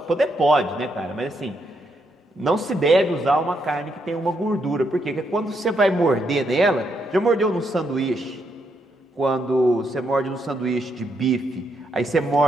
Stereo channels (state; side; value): normal; both; correlation 0.78